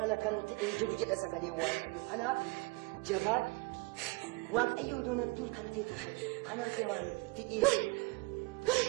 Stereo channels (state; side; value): quieter; left; 26.9 dB